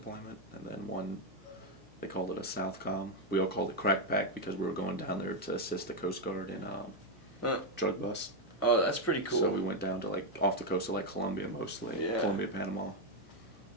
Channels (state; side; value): noise; left; hum, 23 dB below the sound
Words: and then one, they called it a Southcom. We all called it Crack Pack because we were going down there to assist the Coast Guard in drug bust. Oh, that's pretty cool. So we went down to, like, off the coast of, like, Colombia mostly. Yeah. Colombia, Panama.